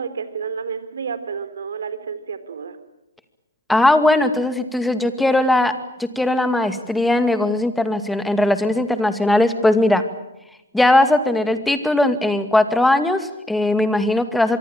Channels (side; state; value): both; normal; correlation 0.79